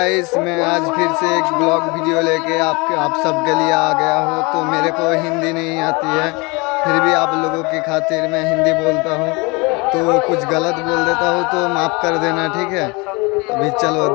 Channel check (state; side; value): quieter; right; 27.2 dB